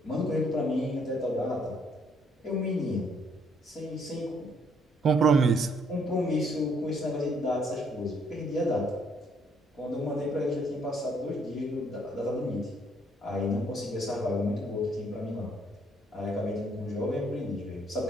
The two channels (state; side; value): normal; both; correlation 0.67